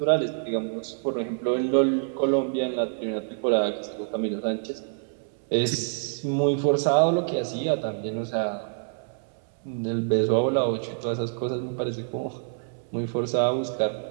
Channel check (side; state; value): left; silent; 60 dB below the other